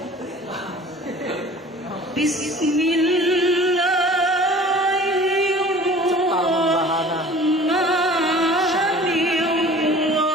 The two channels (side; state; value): both; normal; correlation 0.45